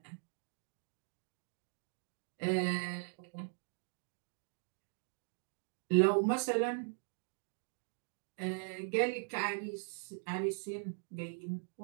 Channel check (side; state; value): left; silent; digital silence